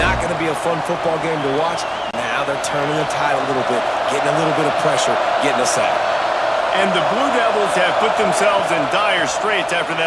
going to be a fun football game to watch. Now they're turning the tide a little bit, getting a little bit of pressure, getting a sack. And the Blue Devils have put themselves in dire straits after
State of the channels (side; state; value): both; identical; correlation 1.00